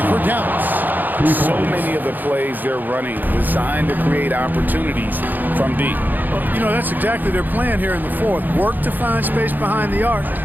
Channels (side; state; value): left; late; 0.086 ms